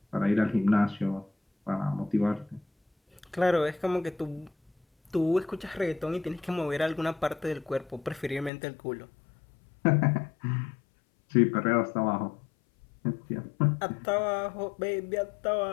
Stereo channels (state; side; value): drops out; right; at 8.5 s